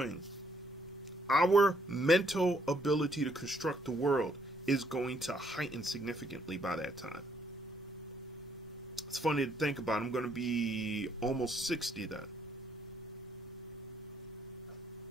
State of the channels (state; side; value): normal; both; correlation 0.70